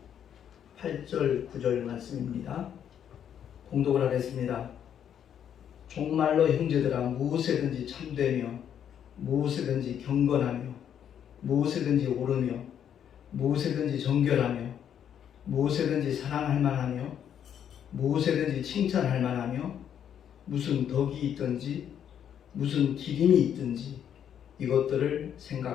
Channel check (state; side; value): quieter; right; 9.1 dB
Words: 8절 9절 말씀입니다. 봉독을 하겠습니다. 종말로 형제들아 무엇에든지 참되며 무엇에든지 경건하며 무엇에든지 옳으며 무엇에든지 정결하며 무엇에든지 사랑할 만하며 무엇에든지 칭찬할 만하며 무슨 덕이 있든지 무슨 기림이 있든지 이것들을